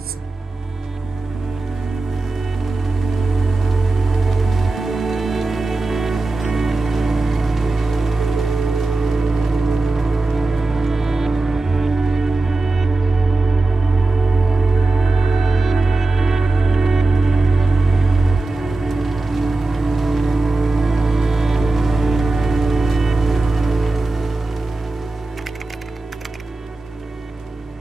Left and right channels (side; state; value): left; quieter; 3.3 dB